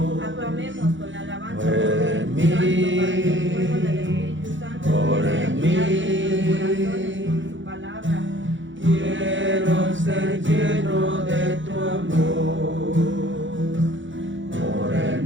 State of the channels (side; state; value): left; late; 0.55 ms